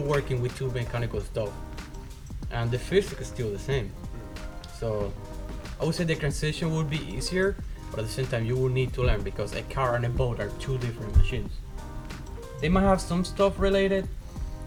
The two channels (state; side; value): identical; both; correlation 1.00